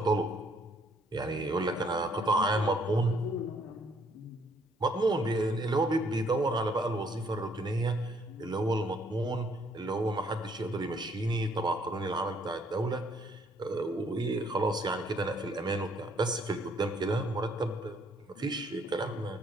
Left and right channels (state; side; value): normal; both; correlation 0.66